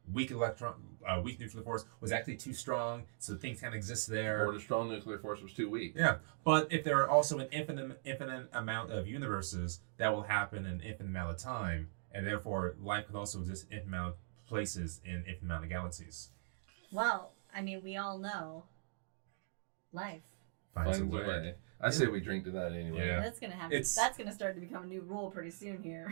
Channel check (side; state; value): left; silent; digital silence